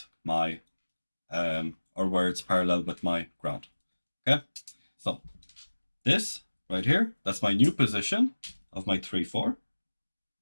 my, or where it's parallel with my ground. Okay, so this right here, that's my new position of my 3, 4.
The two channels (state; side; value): inverted; both; correlation -1.00